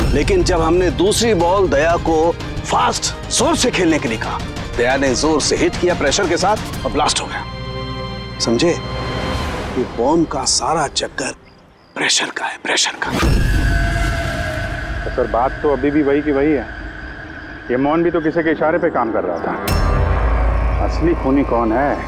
लेकिन जब हमने दूसरी बॉल दया को फास्ट जोर से खेलने के लिए कहा, दया ने जोर से हिट किया प्रेशर के साथ और ब्लास्ट हो गया। समझे? ये बॉम्ब का सारा चक्कर प्रेशर का है, प्रेशर का। तो सर बात तो अभी भी वही की वही है। ये मोहन भी तो किसी के इशारे पे काम कर रहा था। असली खूनी कौन है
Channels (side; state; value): both; identical; correlation 1.00